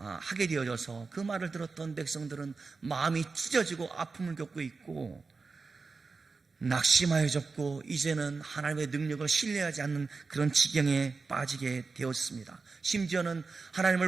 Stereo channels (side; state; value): left; quieter; 4.3 dB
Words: 되어져서 그 말을 들었던 백성들은 마음이 찢어지고 아픔을 겪고 있고 낙심하여졌고 이제는 하나님의 능력을 신뢰하지 않는 그런 지경에 빠지게 되었습니다. 심지어는